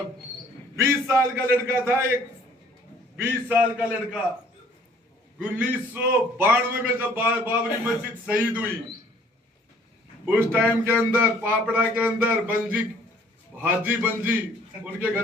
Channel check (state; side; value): normal; both; correlation 0.58